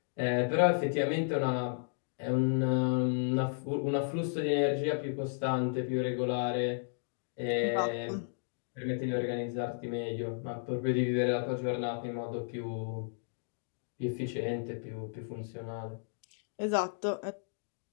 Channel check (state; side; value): silent; right; digital silence